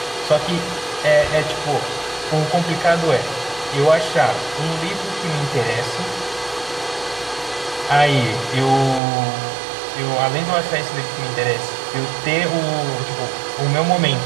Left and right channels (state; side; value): drops out; left; at 9.0 s